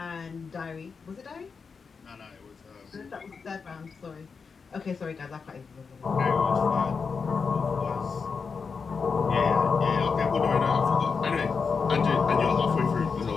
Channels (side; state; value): right; quieter; 5.4 dB